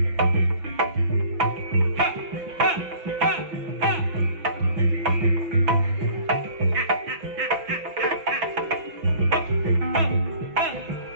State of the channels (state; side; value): late; left; 6.1 ms